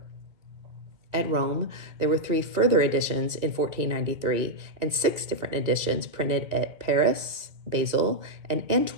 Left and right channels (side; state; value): left; late; 2.0 ms